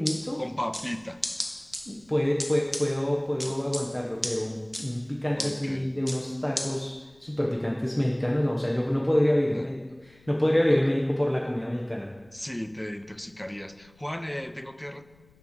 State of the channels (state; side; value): noise; left; rumble, 29 dB below the sound